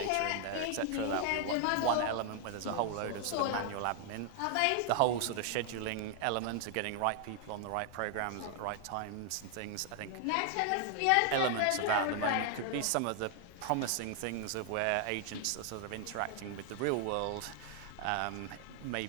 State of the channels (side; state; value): both; different; correlation 0.00